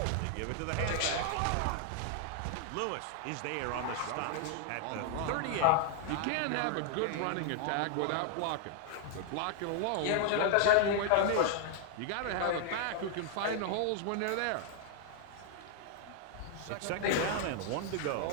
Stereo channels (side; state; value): both; different; correlation 0.00